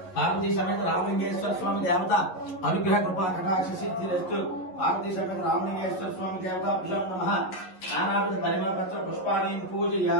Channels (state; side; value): late; right; 11 ms